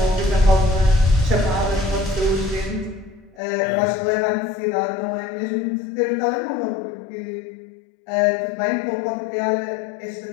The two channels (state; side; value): drops out; right; at 3.4 s